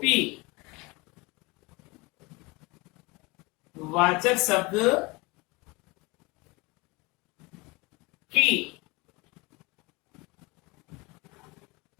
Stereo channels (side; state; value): right; quieter; 24.6 dB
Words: वाचक शब्द की